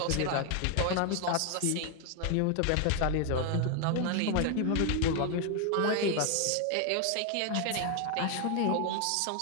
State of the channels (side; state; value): both; different; correlation 0.01